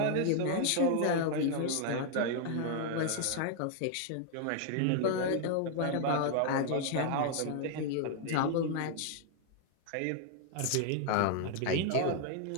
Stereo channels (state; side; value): different; both; correlation 0.00